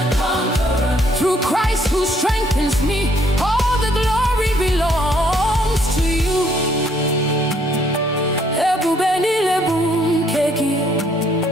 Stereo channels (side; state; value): both; normal; correlation 0.66